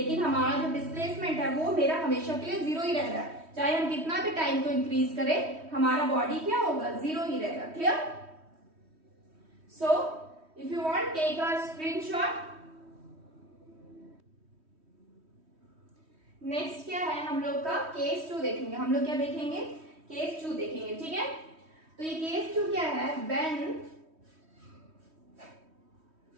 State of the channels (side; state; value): left; late; 3.1 ms